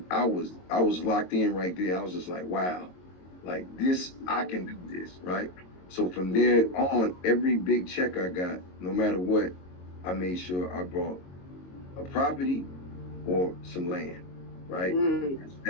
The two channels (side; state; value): right; late; 22 ms